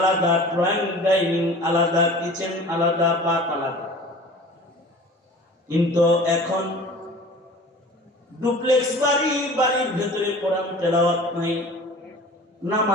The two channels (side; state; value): both; normal; correlation 0.42